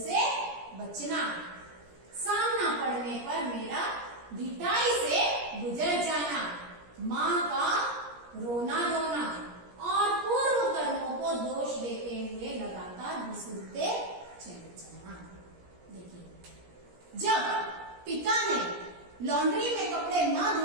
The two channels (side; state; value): left; late; 17 ms